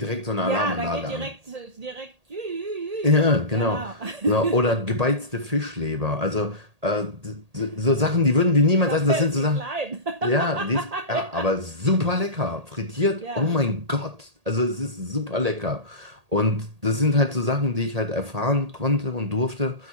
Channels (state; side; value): late; left; 1.8 ms